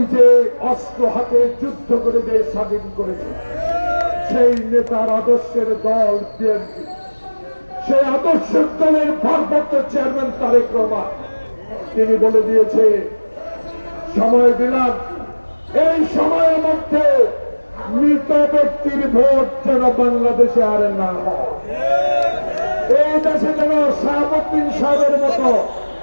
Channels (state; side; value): inverted; both; correlation -1.00